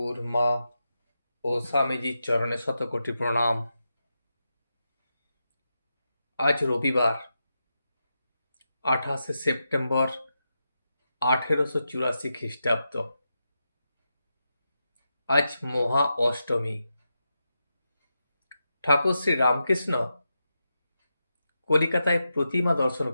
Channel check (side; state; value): both; inverted; correlation -0.88